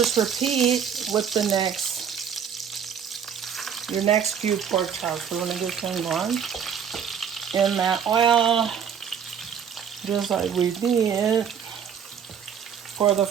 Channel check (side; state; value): left; quieter; 7.7 dB